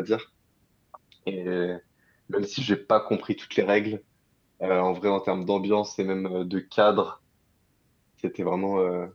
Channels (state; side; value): identical; both; correlation 1.00